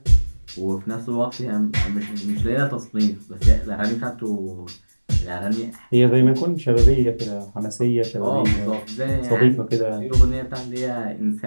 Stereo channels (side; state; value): both; inverted; correlation -1.00